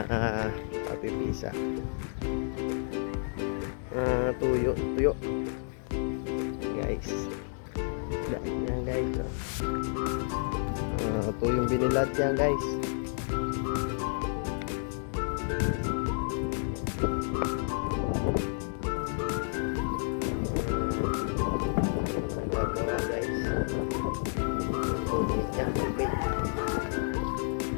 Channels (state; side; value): silent; right; 57 dB below the other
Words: Papipisa. Tuyo guys. Yan guys. Tuyong binilad yan guys. Nagagawa guys. Tuloy niya. Okay.